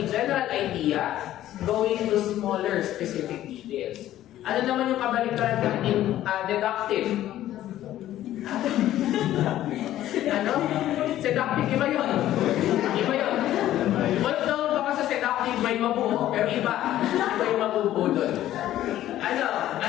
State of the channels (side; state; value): right; quieter; 13.2 dB